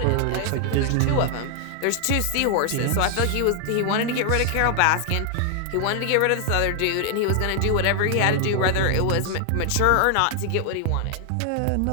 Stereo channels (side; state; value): both; different; correlation 0.00